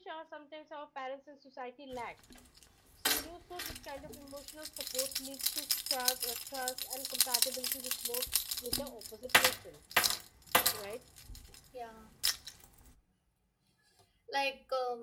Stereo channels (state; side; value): identical; both; correlation 1.00